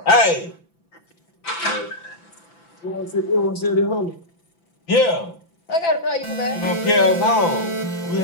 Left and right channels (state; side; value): late; right; 5.9 ms